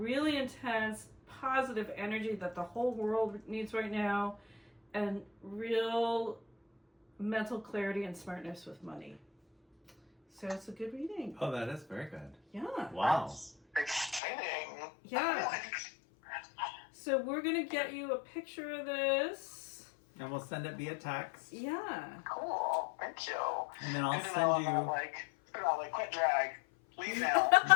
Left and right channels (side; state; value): right; drops out; at 14.2 s